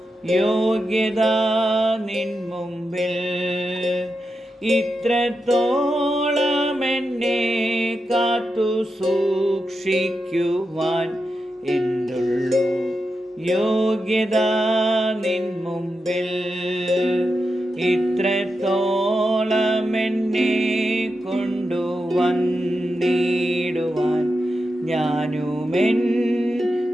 യോഗ്യത നിൻ മുമ്പിൽ. ഇത്രത്തോളം എന്നെ കാത്തു സൂക്ഷിക്കുവാൻ എന്തുള്ളൂ യോഗ്യത നിൻ മുമ്പിൽ. ഇത്രത്തോളം എന്നെ കൊണ്ടുവന്നിടുവാൻ ഞാനുമെൻ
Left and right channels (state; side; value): normal; both; correlation 0.88